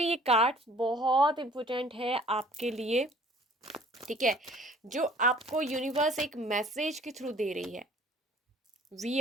ये कार्ड्स बहुत इंपॉर्टेंट है आपके लिए, ठीक है। जो आपको यूनिवर्स एक मैसेज के थ्रू दे रही है। वी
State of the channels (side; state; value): both; normal; correlation 0.53